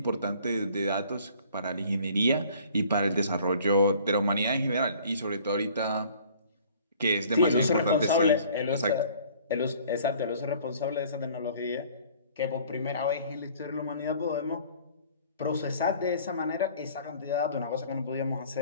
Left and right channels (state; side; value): inverted; both; correlation -0.53